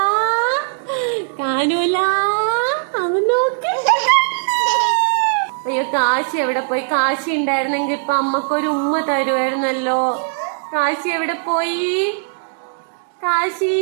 കാണൂല. അവൻ നോക്ക്. അയ്യോ കാശി എവിടെ പോയി? കാശി ഉണ്ടായിരുന്നെങ്കിൽ ഇപ്പൊ അമ്മക്കൊരു ഉമ്മ തരുമായിരുന്നല്ലോ. കാശി എവിടെ പോയി? കാശി,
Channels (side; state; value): left; silent; digital silence